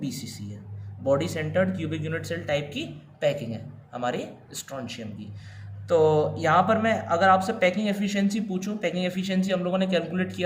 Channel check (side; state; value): both; identical; correlation 1.00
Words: BCC है, body centered cubic unit cell type की पैकिंग है हमारे स्ट्रोंशियम की। तो यहाँ पर मैं अगर आपसे पैकिंग एफिशिएंसी पूछूं, पैकिंग एफिशिएंसी हम लोगों ने कैलकुलेट